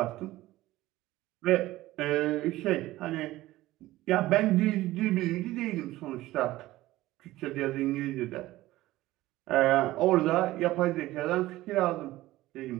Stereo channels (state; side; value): quieter; left; 16.9 dB